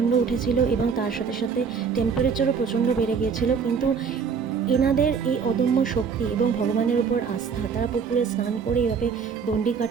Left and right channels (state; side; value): quieter; left; 6.1 dB